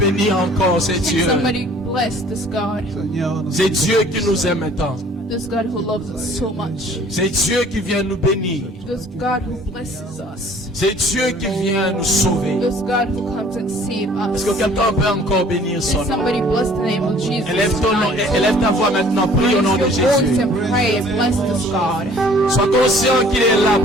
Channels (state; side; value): normal; both; correlation 0.54